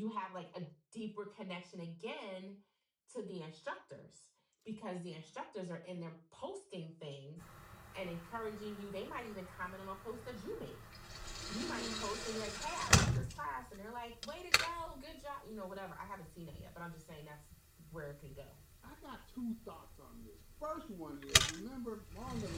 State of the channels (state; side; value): identical; both; correlation 1.00